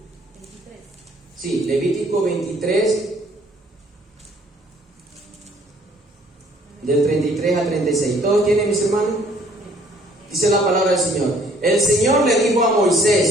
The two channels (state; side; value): normal; both; correlation 0.60